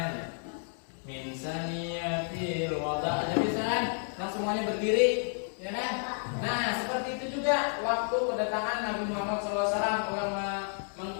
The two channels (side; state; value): right; silent; 57 dB below the other